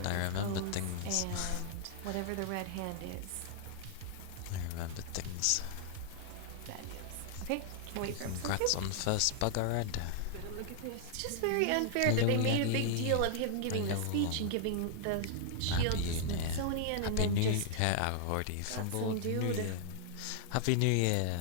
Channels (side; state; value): both; different; correlation 0.00